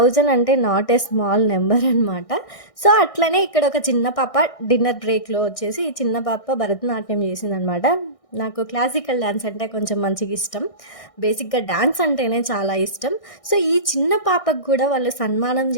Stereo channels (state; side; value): late; right; 1.6 ms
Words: అంటే నాట్ ఏ స్మాల్ నంబర్ అనమాట. సో, అట్లనే ఇక్కడ ఒక చిన్న పాప డిన్నర్ బ్రేక్‌లో వచ్చేసి ఈ చిన్న పాప భరతనాట్యం చేసిందనమాట. నాకు క్లాసికల్ డాన్స్ అంటే కొంచెం మంచిగా ఇష్టం. బేసిక్‌గా డాన్స్ అంటేనే చాలా ఇష్టం. సో, ఈ చిన్న పాపకు కూడా వాళ్ళు సన్మానం